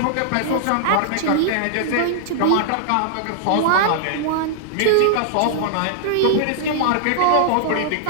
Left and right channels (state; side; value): different; both; correlation -0.01